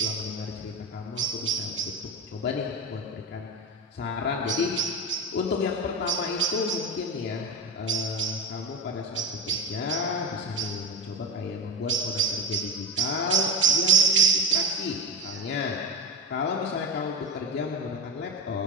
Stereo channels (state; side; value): normal; both; correlation 0.19